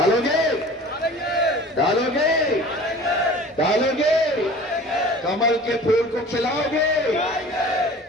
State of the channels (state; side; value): normal; both; correlation 0.43